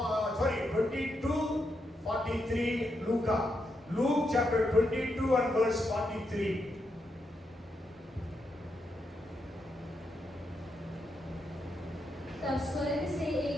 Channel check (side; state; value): both; normal; correlation 0.83